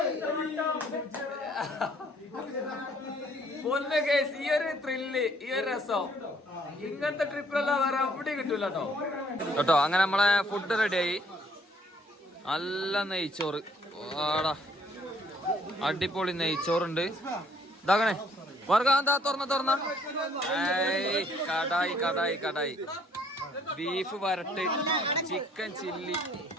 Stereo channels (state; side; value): normal; both; correlation 0.62